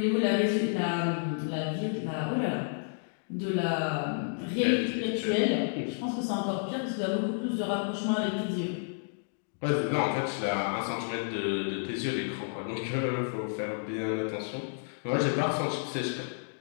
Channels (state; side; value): silent; right; digital silence